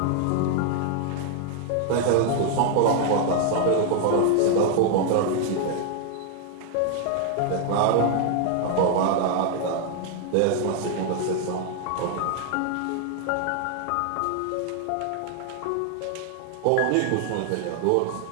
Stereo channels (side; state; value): both; different; correlation 0.00